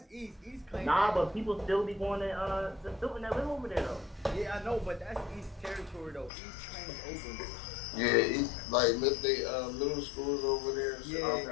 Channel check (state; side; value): drops out; right; at 6.3 s